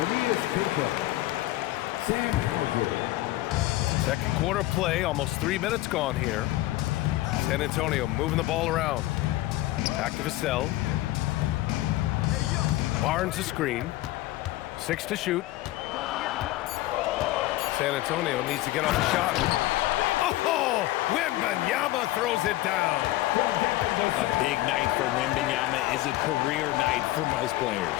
Second quarter play, almost 3 minutes gone here. San Antonio moving the ball around. Back to Vassell. Barnes a screen. 6 to shoot. San Antonio needs to get off the shot. Oh! Wembanyama throws it down. A big night for Wembanyama is a career night for most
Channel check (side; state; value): right; quieter; 16.8 dB